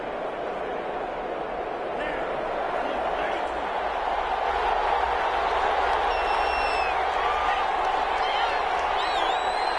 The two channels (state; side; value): identical; both; correlation 1.00